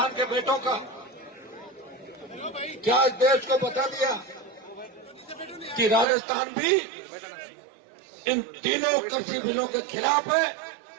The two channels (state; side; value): drops out; left; at 6.1 s